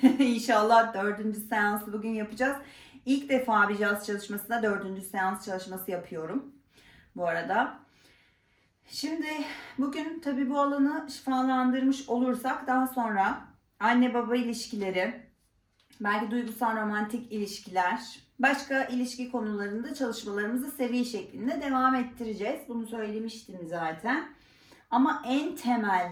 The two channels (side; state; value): both; identical; correlation 1.00